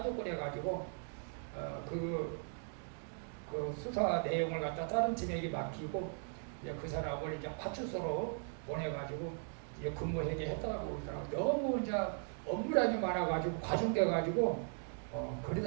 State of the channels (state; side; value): silent; left; 52 dB below the other